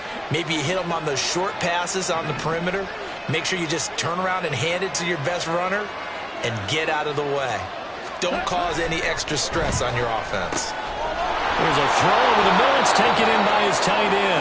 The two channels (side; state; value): both; identical; correlation 1.00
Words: Maybe you hit them on those short passes on the perimeter. Make sure you just turn around and hand it to your best runner and get out of the way. Don't cause any extra stress on your offense. There's a throw over the middle. It's taken in by his tight